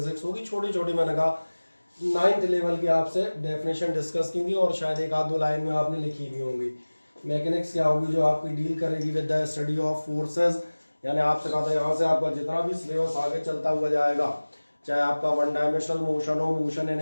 होगी। छोटी छोटी मैंने कहा 9th लेवल की आपसे डेफिनेशन डिस्कस की थी और शायद एक आध दो लाइन में आपने लिखी भी होंगी। मैकेनिक्स क्या होगी, जो आपकी डील करेगी with the study of forces. यानी आपसे कहा था यहाँ से आपका जितना भी सिलेबस आगे चलता हुआ जाएगा, चाहे आपका वन डायमेंशनल मोशन हो, motion in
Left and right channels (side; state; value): both; inverted; correlation -1.00